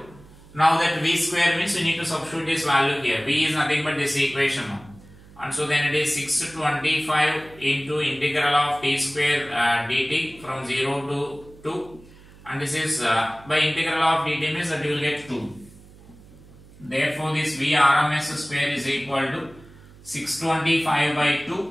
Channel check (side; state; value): right; noise; hum, 22 dB below the sound